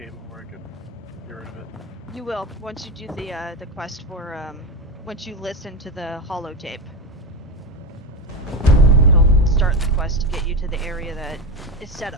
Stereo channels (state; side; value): normal; both; correlation 0.16